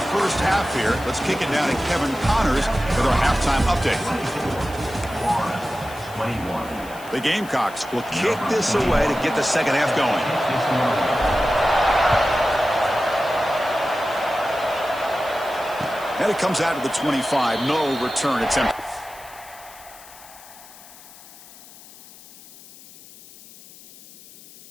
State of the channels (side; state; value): left; noise; hiss, 20 dB below the sound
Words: first half here. Let's kick it down to Kevin Connors with our halftime update. The Gamecocks will kick this away to get the second half going. And it comes out of the 25. No return attempt.